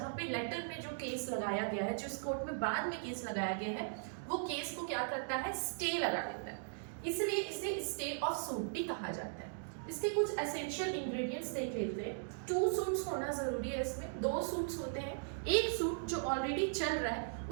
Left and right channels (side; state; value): left; silent; digital silence